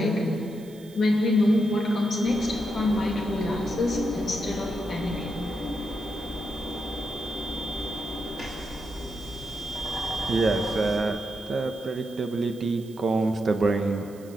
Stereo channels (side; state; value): right; noise; hiss, 24 dB below the sound